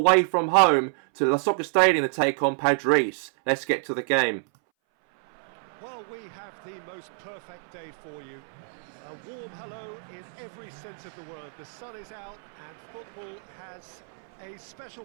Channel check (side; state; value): left; silent; 59 dB below the other